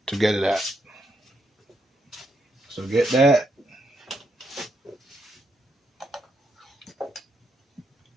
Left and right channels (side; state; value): both; normal; correlation 0.79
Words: to get it out. So get that.